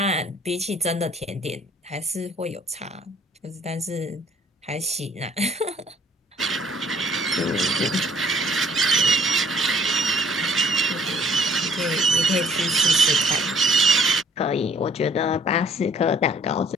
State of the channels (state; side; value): normal; both; correlation 0.58